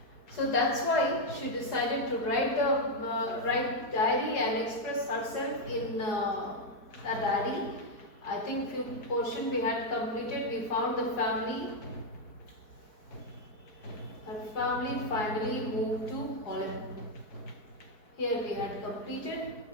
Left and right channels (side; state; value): right; late; 4.6 ms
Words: So that's why she decided to write diary and express herself in a diary. I think few portion we had completed. We found the family. Her family finally moved to Holland. Here we had completed.